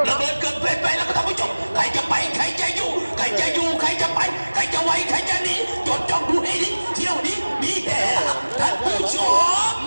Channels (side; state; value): both; inverted; correlation -1.00